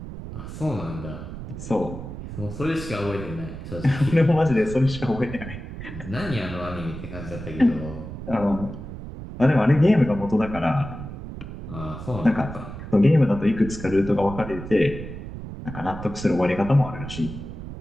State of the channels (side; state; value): right; noise; rumble, 10 dB below the sound